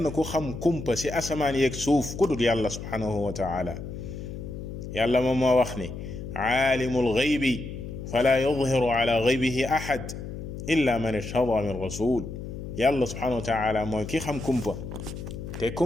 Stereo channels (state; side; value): noise; left; hum, 9 dB below the sound